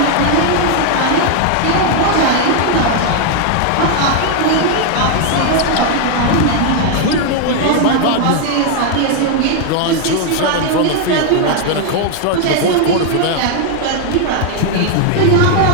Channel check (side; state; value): both; different; correlation 0.00